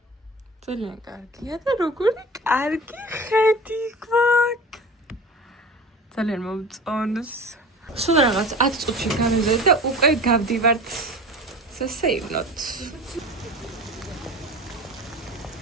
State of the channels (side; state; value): both; normal; correlation 0.36